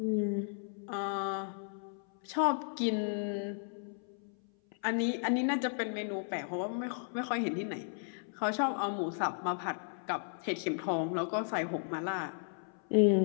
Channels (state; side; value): silent; right; 55 dB below the other